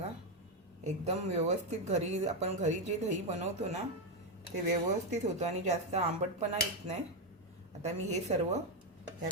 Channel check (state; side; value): normal; both; correlation 0.06